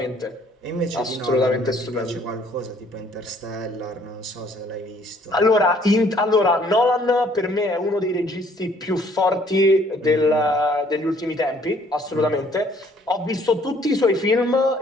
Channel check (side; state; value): both; normal; correlation 0.61